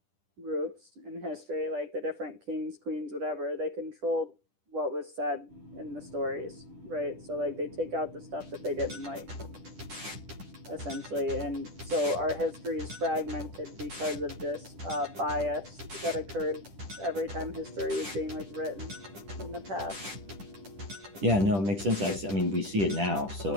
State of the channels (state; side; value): late; left; 10 ms